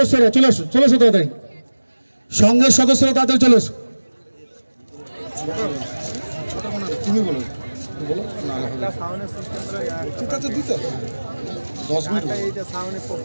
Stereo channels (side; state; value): both; inverted; correlation -1.00